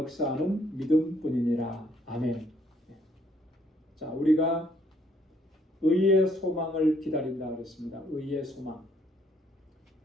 믿음뿐이니라. 아멘. 자, 우리가 의의 소망을 기다린다 그랬습니다. 의의 소망.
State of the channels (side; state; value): both; normal; correlation 0.67